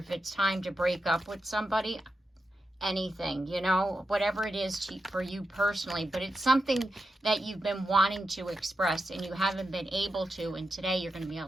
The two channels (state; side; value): normal; both; correlation 0.88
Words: it's time to break up with somebody. Anything, you know, whatever it is for you personally, but it's something that you've been wanting to express and you haven't been able to, and today you're going to be